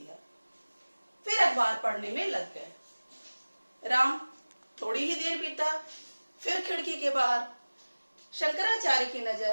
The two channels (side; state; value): both; inverted; correlation -1.00